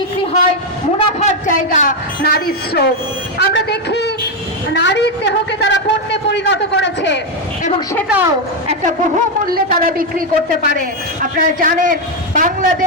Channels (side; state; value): both; normal; correlation 0.04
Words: হয়, মুনাফার জায়গা নারীর শ্রম। আমরা দেখি নারীর দেহকে তারা পণ্যে পরিণত করেছে এবং সেটাও একটা বহুমূল্যে তারা বিক্রি করতে পারে। আপনারা জানেন